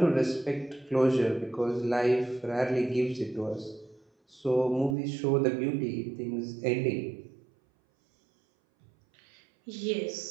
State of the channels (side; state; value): left; drops out; at 5.0 s